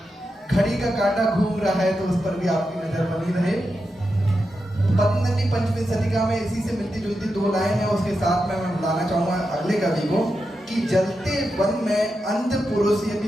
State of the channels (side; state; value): both; normal; correlation 0.88